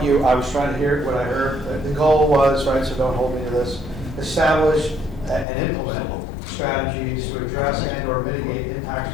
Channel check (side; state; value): right; drops out; at 5.5 s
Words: I was trying to hear, what I heard. The goal was, right, so don't hold me to this, establish and implement strategies to address and or mitigate impacts